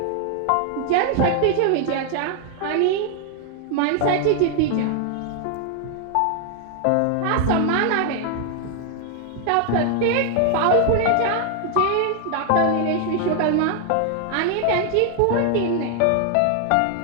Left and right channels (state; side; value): different; both; correlation 0.00